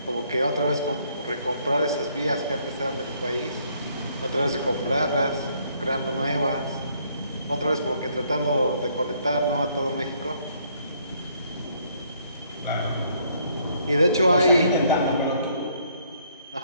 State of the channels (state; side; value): inverted; both; correlation -0.67